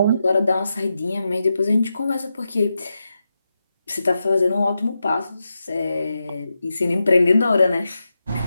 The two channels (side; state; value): both; inverted; correlation -0.89